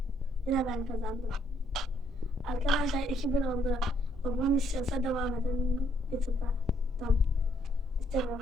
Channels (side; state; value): both; normal; correlation 0.70